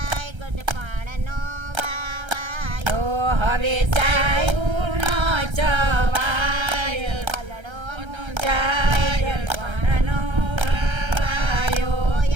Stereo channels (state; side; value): late; left; 1.3 ms